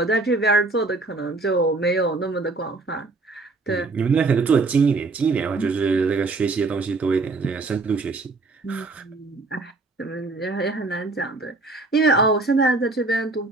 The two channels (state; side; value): quieter; left; 3.5 dB